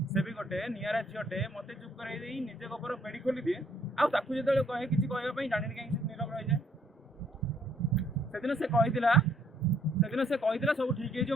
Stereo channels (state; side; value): normal; both; correlation 0.66